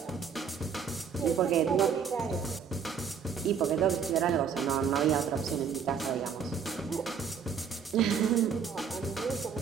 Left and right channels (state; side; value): quieter; left; 6.7 dB